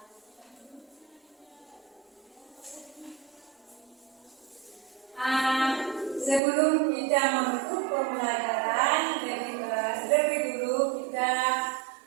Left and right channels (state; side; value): drops out; left; at 6.4 s